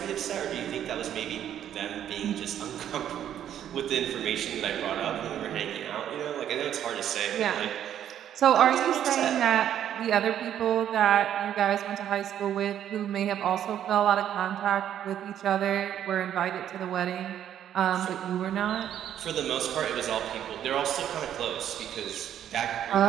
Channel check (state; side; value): quieter; left; 10.3 dB